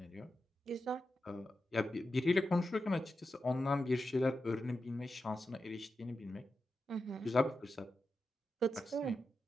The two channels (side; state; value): both; normal; correlation 0.90